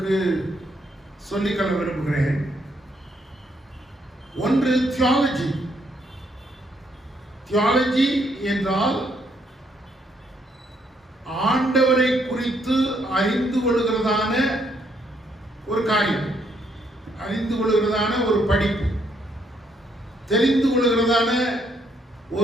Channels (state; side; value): normal; both; correlation 0.73